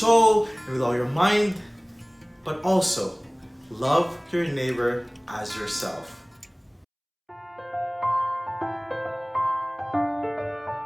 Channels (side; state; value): both; identical; correlation 1.00